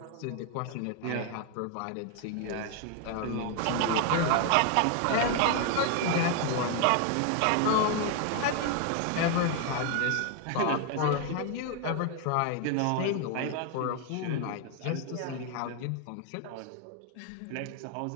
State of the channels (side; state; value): both; different; correlation 0.01